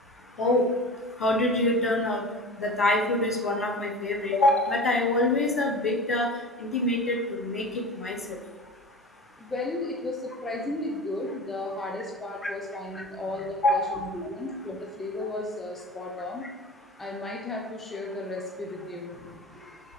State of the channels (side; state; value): both; normal; correlation 0.35